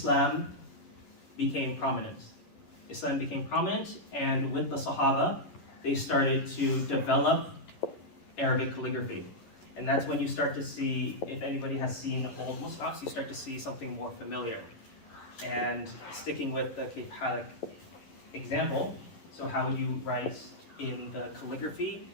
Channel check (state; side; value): late; right; 11 ms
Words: became prominent. And with the Sahaba, they started to develop Arabic calligraphy. And that's when you start to see, if anybody has seen old mushafs, you start to see something more familiar. And sticking with the Kayf Halik example, so how would you write in the calligraphy